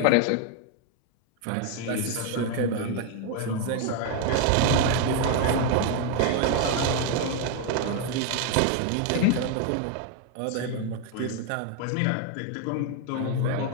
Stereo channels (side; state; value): both; different; correlation 0.01